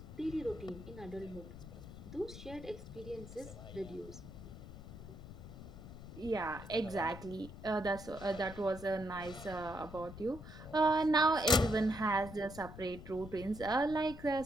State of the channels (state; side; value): noise; left; rumble, 13 dB below the sound